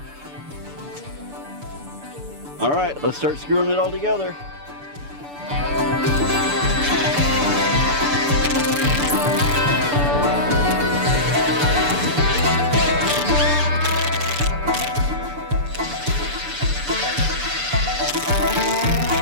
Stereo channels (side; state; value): left; late; 6.9 ms